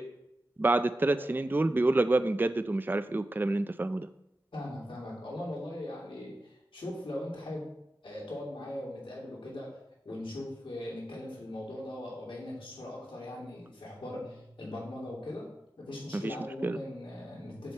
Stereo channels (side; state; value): both; normal; correlation 0.91